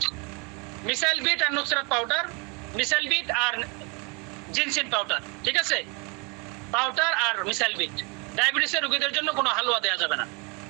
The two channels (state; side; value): quieter; left; 31.1 dB